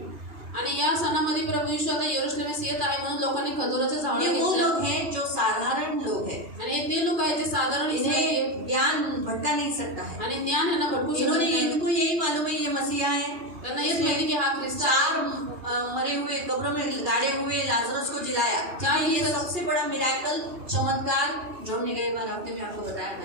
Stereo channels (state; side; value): late; left; 2.4 ms